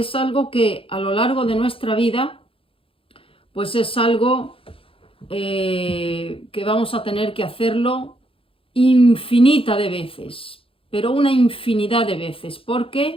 algo que a lo largo de nuestra vida, pues es algo que vamos a tener que hacerlo infinita de veces, pero una infinidad de veces,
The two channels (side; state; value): right; late; 0.27 ms